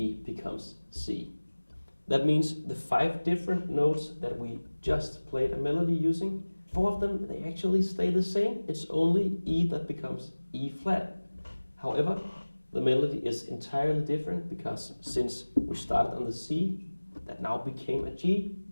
becomes C. That means the 5 different notes that we just played a melody using, 4 of them, they actually stay the same. It's only E that becomes E flat. However, the melody is entirely different because since we started on the C, that now became a G,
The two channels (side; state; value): both; inverted; correlation -1.00